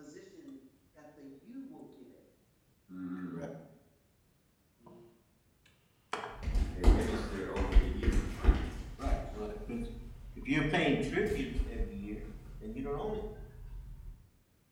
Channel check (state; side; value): identical; both; correlation 1.00